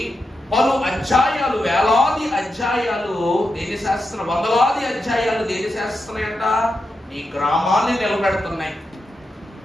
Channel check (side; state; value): both; normal; correlation 0.87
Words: పలు అధ్యాయాలు, వేలాది అధ్యాయాలు దేని శాసిస్తున్నాయి? వందలాది అధ్యాయాలు దేని శాసిస్తున్నాయంట? నీ గ్రామాన్ని నిలబెడుతున్నాయి.